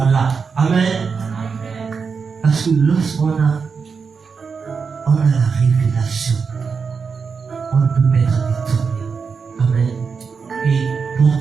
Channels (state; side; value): quieter; left; 5.5 dB